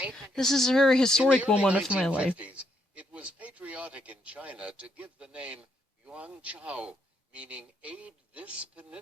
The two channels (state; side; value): normal; both; correlation 0.75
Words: This is a very historic moment of my life. It was patriotic in China to give the name Yuanchao, meaning aid this